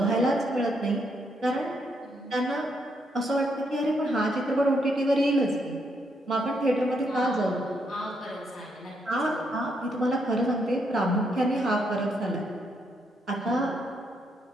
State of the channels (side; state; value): both; normal; correlation 0.76